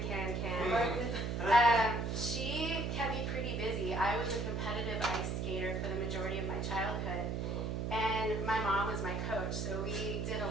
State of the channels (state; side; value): noise; right; hum, 1 dB below the sound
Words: she kept me pretty busy. I was a competitive ice skater for the majority of my childhood, and my mom was my coach, so we did a